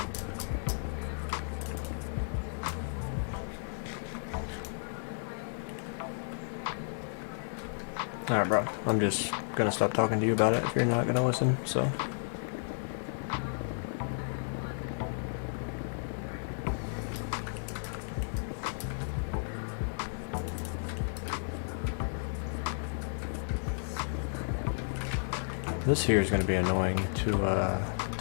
Alright, bro. I'm just gonna stop talking to you about it if you're not gonna listen, so. This here is gonna be annoying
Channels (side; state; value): right; silent; digital silence